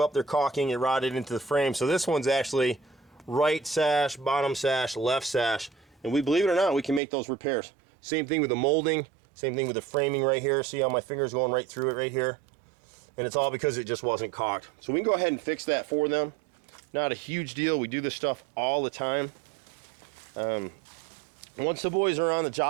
their caulking. It rotted into the frame. So this one's actually right sash, bottom sash, left sash. And we, believe it or not, we can make those repairs. Same thing with the molding, same thing with the framing right here. See how my finger's going right through it right here? And it's all because it just wasn't caulked. So we can go ahead and fix that for them. Not a huge deal. We do this stuff all the time. Once the boys are on the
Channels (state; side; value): drops out; left; at 7.0 s